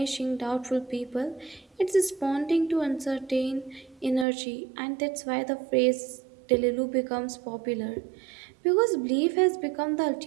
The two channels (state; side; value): drops out; left; at 4.2 s